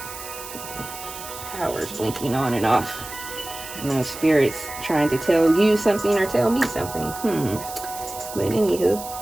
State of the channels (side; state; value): right; noise; hiss, 12 dB below the sound